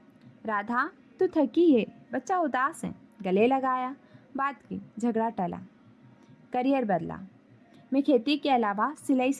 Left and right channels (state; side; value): identical; both; correlation 1.00